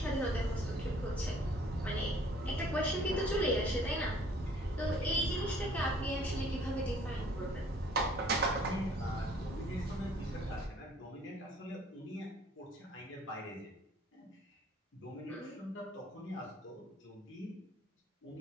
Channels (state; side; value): normal; both; correlation 0.57